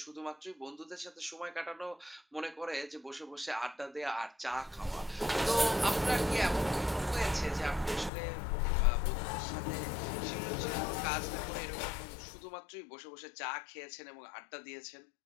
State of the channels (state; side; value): drops out; right; at 8.1 s